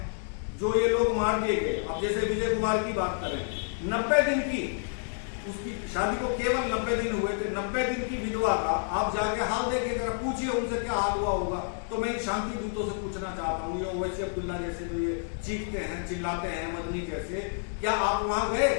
जो ये लोग मार दिए गए, अब जैसे विजय कुमार की बात करें, 90 दिन की उसकी शादी को केवल 90 दिन हुए थे, 90 दिन की विधवा का आप जाके हाल देखिए, जरा पूछिए उनसे क्या हाल हुआ होगा। तो मैं शांति दूतों से पूछना चाहता हूँ, ये ओवैसी अब्दुल्ला जैसे जो ये चीखते हैं, चिल्लाते हैं, मदनी जैसे, क्या आप वहां गए?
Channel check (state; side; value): silent; right; digital silence